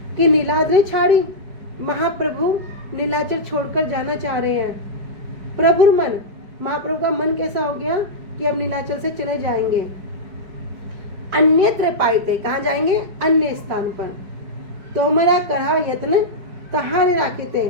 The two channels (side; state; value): left; late; 4.9 ms